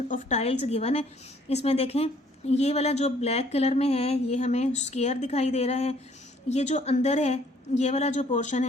ऑफ टाइल्स गिवन है। इसमें देखें ये वाला जो ब्लैक कलर में है ये हमें स्क्वायर दिखाई दे रहा है। ये जो अंदर है ये वाला जो पोर्शन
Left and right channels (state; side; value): normal; both; correlation 0.61